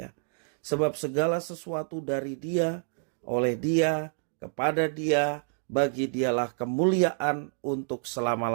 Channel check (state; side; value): silent; left; digital silence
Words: Sebab segala sesuatu dari Dia, oleh Dia, kepada Dia, bagi Dialah kemuliaan untuk